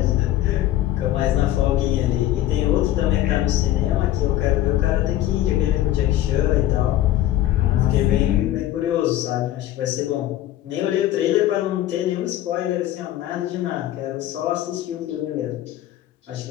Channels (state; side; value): quieter; right; 13.6 dB